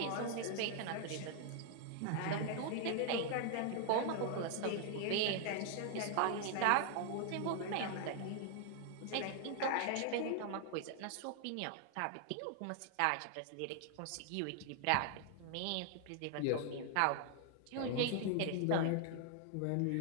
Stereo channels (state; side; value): different; both; correlation 0.00